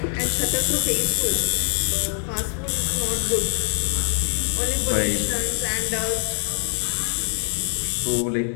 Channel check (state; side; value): silent; right; 63 dB below the other